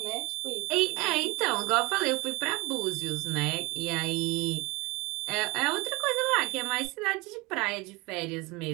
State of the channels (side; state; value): left; quieter; 24.7 dB